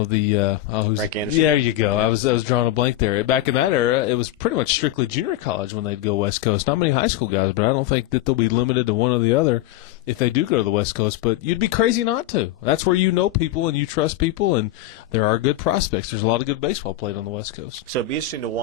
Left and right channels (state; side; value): quieter; right; 13.5 dB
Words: Anderson. Yeah, there you go. Yeah. I was drawing a blank there. Back in that era, it was pretty much strictly junior college when they'd go West Coast. Not many high school guys, but I don't think that they'll be limited to one or the other if they do go to the West Coast. But you'd be crazy not to. That's where you know people and you trust people, and there are good prospects. There's a lot of good baseball played on the West Coast. So it'd be interesting to